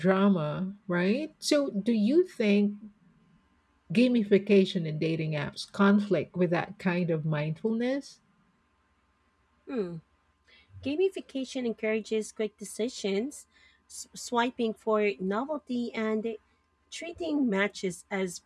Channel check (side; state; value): both; identical; correlation 1.00